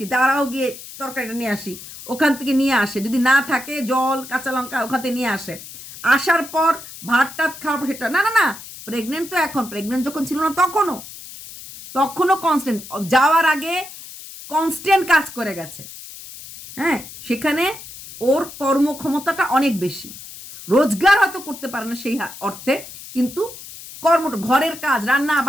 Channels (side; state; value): left; noise; hiss, 15 dB below the sound